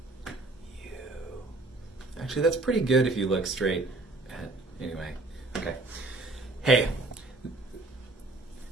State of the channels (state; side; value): quieter; left; 3.0 dB